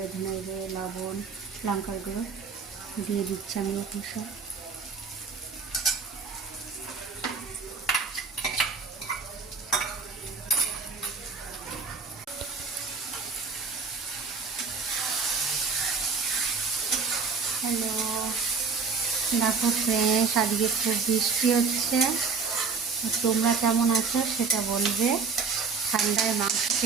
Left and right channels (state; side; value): quieter; left; 5.1 dB